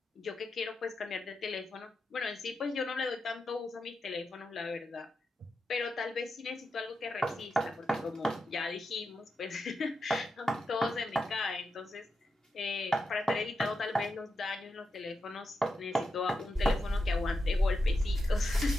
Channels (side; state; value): both; normal; correlation 0.87